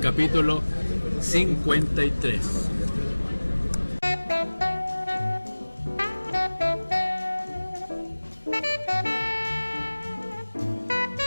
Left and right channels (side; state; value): both; inverted; correlation -1.00